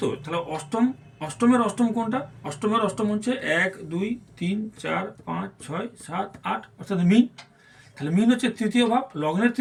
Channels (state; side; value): identical; both; correlation 1.00